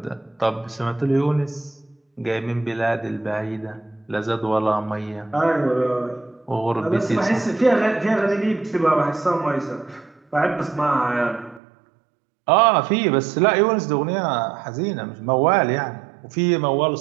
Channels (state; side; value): drops out; left; at 11.6 s